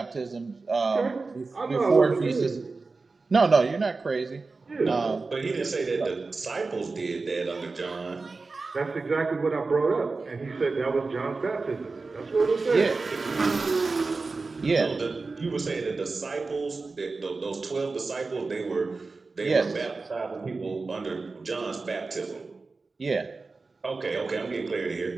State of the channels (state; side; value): quieter; left; 3.9 dB